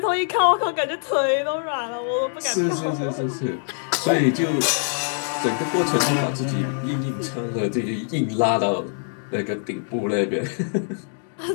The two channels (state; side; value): silent; right; 63 dB below the other